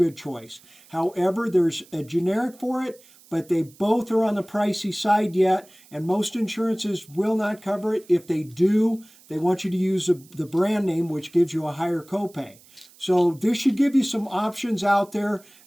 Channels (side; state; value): right; noise; hiss, 26 dB below the sound